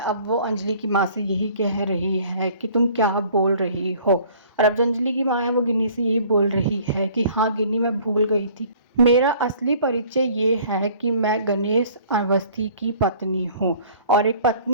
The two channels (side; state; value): both; inverted; correlation -0.52